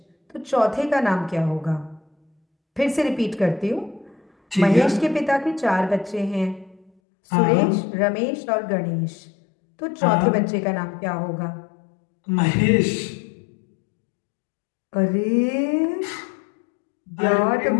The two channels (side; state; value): right; drops out; at 6.9 s